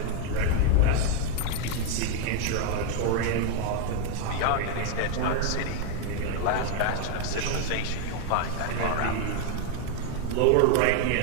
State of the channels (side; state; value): both; different; correlation 0.01